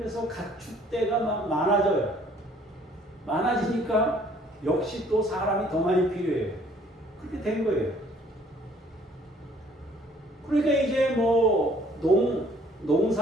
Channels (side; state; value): both; normal; correlation 0.59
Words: 가축대가 막 많아져요. 많아지니까 역시 또 사람이 더 많이 필요해요. 그렇게 된 거예요. 그러니까 이제 뭐